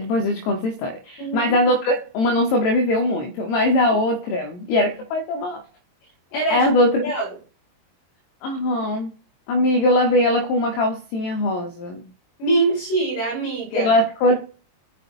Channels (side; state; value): right; late; 22 ms